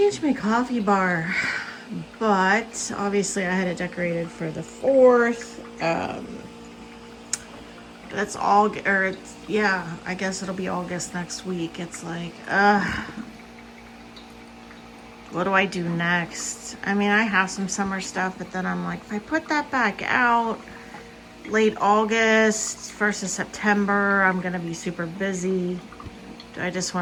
my coffee bar, but obviously I had it decorated for the 4th. That's all, or it's, yeah, I guess it'll be August next week. It's like, what do I do next? I mean, I have some summer stuff, but then I'm like, if I put that back out, late August, 1st of September. I'm gonna be super busy. Do I just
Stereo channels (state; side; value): identical; both; correlation 1.00